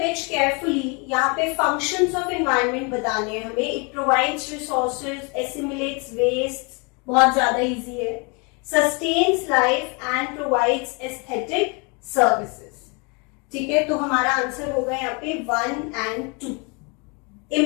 carefully. यहाँ पे फंक्शंस ऑफ एनवायरनमेंट बताने हैं हमें. It provides resources, assimilates waste, बहुत ज्यादा इजी है. Sustains life and provides aesthetic services. ठीक है, तो हमारा आंसर होगा यहाँ पे 1 and 2.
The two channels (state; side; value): quieter; right; 32.0 dB